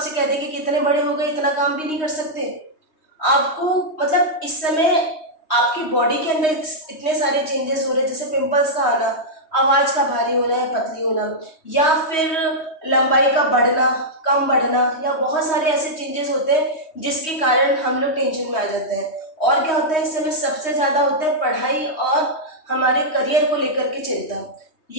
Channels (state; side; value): late; right; 3.2 ms